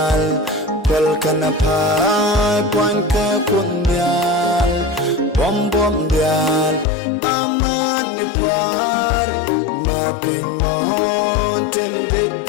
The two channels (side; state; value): right; drops out; at 6.9 s